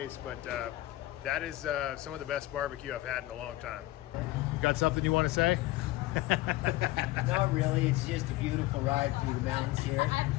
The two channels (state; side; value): quieter; right; 17.6 dB